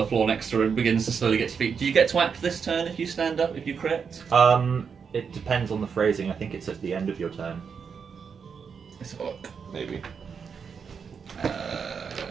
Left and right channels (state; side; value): quieter; left; 6.3 dB